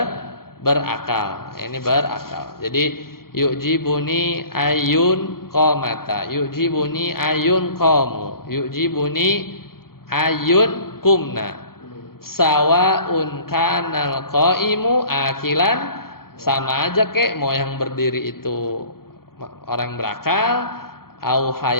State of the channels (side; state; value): right; late; 0.93 ms